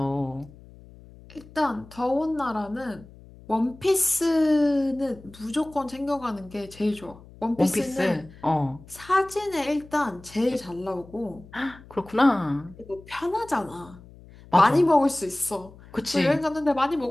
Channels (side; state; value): left; noise; hum, 21 dB below the sound